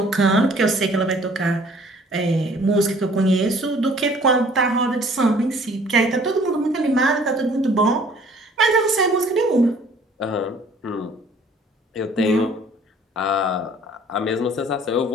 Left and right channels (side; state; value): both; normal; correlation 0.55